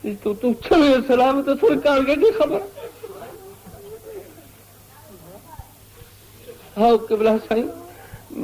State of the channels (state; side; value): identical; both; correlation 1.00